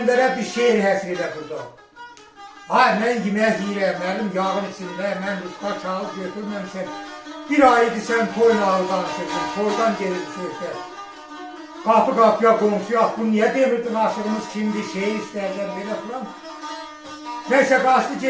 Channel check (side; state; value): both; identical; correlation 1.00